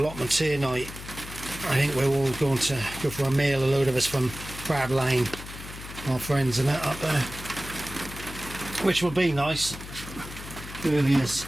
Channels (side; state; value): left; noise; hum, 12 dB below the sound